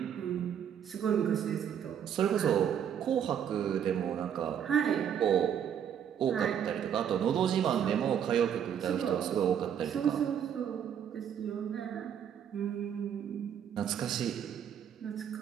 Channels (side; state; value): left; quieter; 8.8 dB